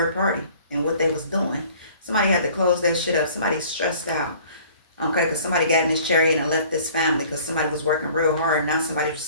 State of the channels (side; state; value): both; inverted; correlation -0.51